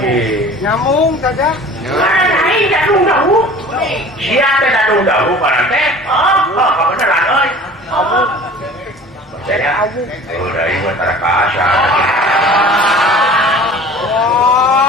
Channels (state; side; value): normal; both; correlation 0.44